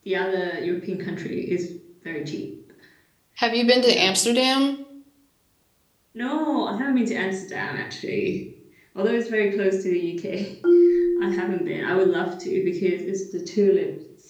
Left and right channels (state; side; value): identical; both; correlation 1.00